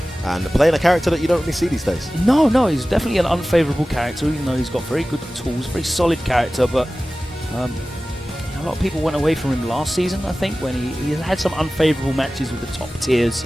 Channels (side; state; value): both; normal; correlation 0.96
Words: And playing a character that you don't really see these days. No, he's definitely an unfavourable character, even though he's got very good tools, very solid character. But a lot of people went away from him last season, I think, when he had some unfavourable matches with the top tiers.